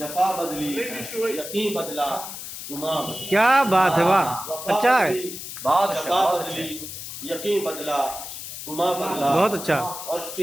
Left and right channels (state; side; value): noise; left; hiss, 9 dB below the sound